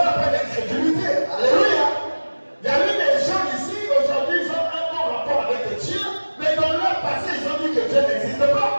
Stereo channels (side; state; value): both; inverted; correlation -1.00